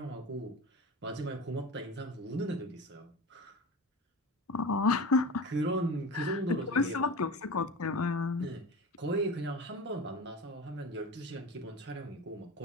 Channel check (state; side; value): normal; both; correlation 0.31